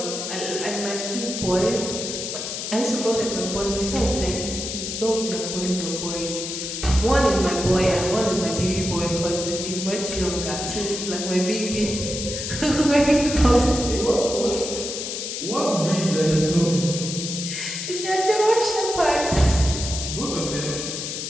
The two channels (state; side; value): noise; left; hiss, 5 dB below the sound